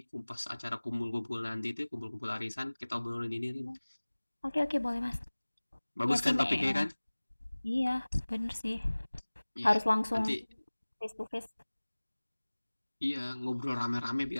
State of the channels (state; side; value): inverted; both; correlation -1.00